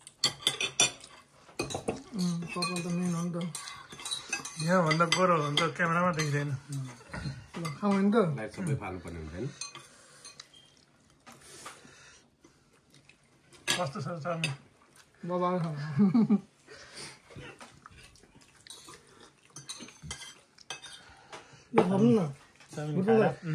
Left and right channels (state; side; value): identical; both; correlation 1.00